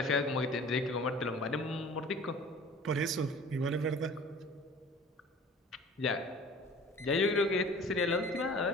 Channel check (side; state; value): both; normal; correlation 0.45